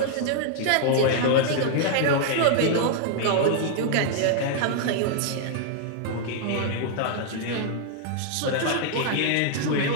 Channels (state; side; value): different; both; correlation 0.00